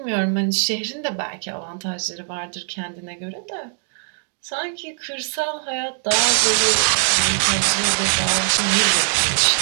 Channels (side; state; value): left; silent; 64 dB below the other